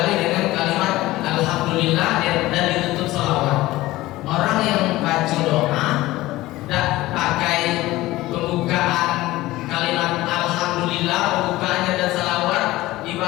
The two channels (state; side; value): quieter; right; 17.7 dB